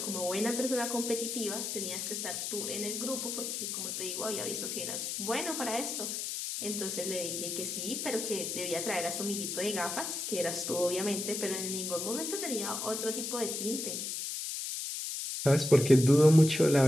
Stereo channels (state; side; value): noise; left; hiss, 4 dB below the sound